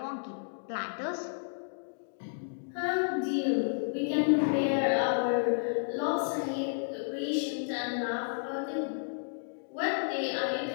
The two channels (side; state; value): right; silent; digital silence